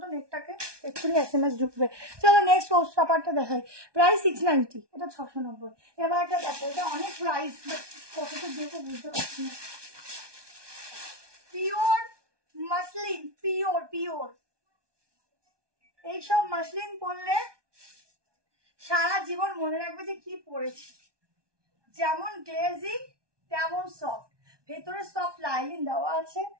তো, নেটটাকে এক্ষুনি SMS ঢুকবে। চলো নেক্সট পোস্ট পেপারটা দেখাই, প্রাইস 690, এটা 690। এবার একটা দেখো, এটা অনেক প্রাইস, বাট কতটা দেবো বুঝতে পারছি না। পিওর মাসলিন, পিওর পিওর, এইসব মাসলিন পরলে সারা জীবন মনে রাখবে যে কি পরেছি। যেমন গ্লেজি তেমন সফট, ভেতরে সফট লাইনিং দেওয়া আছে।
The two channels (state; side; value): late; left; 1.2 ms